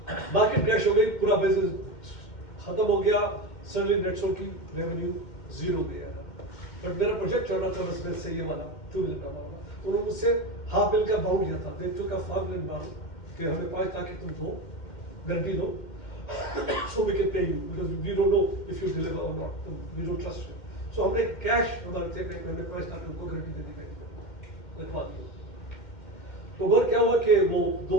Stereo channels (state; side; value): late; right; 2.1 ms